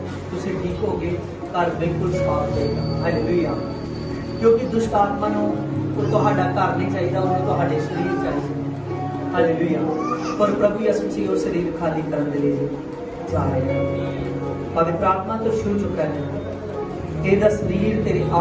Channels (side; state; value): both; identical; correlation 1.00